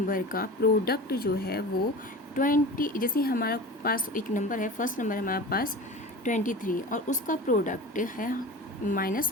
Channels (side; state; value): both; normal; correlation 0.34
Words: का प्रोडक्ट जो है वो 20, जैसे हमारा पास एक नंबर है, फर्स्ट नंबर हमारे पास 23 और उसका प्रोडक्ट है